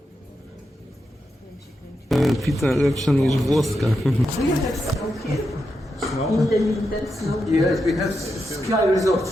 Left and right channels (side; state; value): both; normal; correlation 0.86